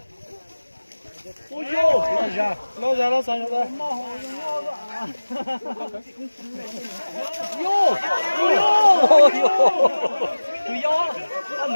ôi vô lo ra lo sang rồi vô tự do ăn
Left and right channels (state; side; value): inverted; both; correlation -1.00